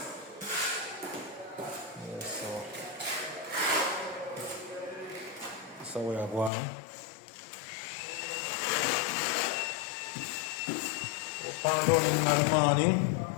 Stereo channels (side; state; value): right; drops out; at 6.5 s